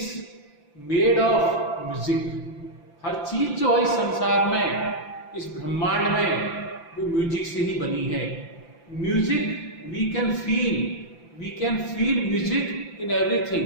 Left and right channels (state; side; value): late; right; 5.9 ms